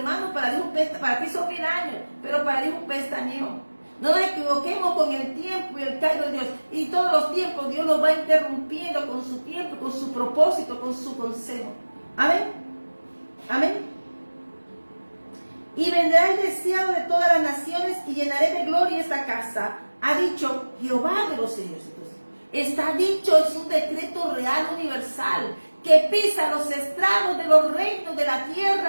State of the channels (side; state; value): both; inverted; correlation -1.00